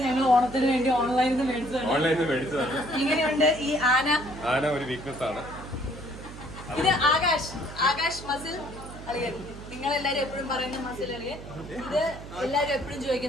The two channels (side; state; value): right; noise; hum, 13 dB below the sound